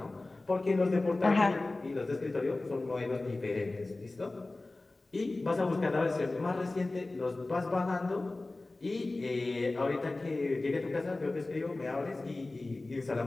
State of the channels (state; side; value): quieter; right; 3.1 dB